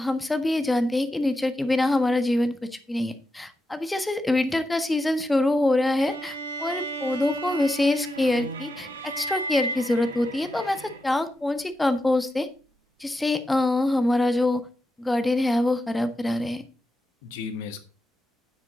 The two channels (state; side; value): normal; both; correlation 0.87